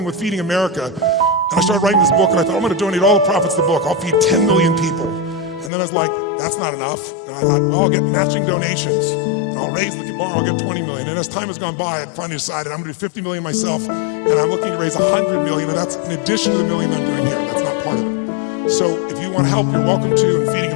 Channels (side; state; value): right; drops out; at 5.7 s